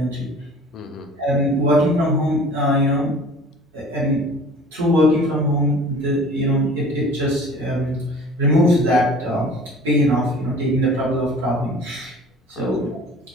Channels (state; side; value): normal; both; correlation 0.46